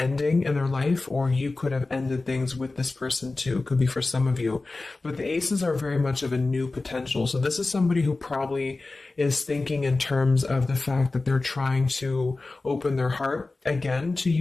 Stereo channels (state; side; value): quieter; right; 3.4 dB